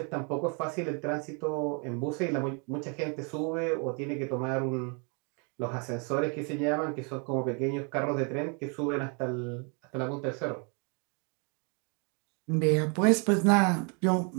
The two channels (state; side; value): quieter; left; 35.7 dB